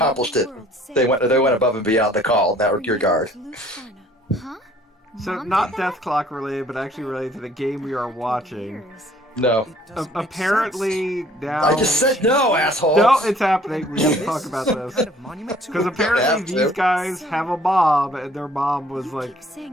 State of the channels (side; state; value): both; normal; correlation 0.57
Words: it. They went above and beyond the call in that regard. Huh? So Mom not did that? Death Clock related, but actually related to the game we are watching. Years. No. Apparently now. I just said no, asshole! No, it's happening. We have to talk about this. Because have apparently to. these guys have a mom, and their mom was You like keep